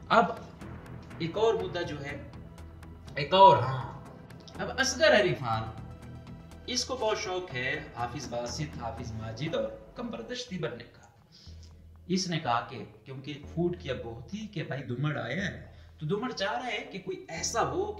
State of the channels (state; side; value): identical; both; correlation 1.00